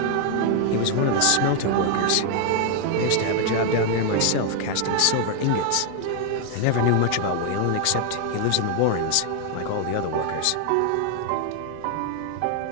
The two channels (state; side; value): different; both; correlation 0.00